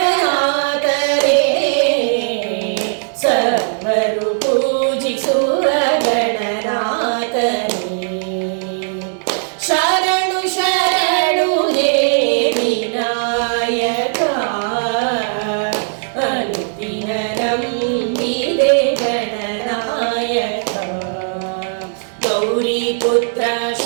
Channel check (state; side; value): silent; left; digital silence